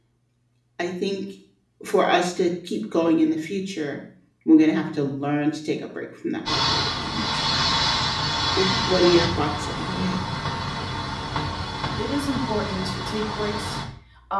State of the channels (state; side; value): identical; both; correlation 1.00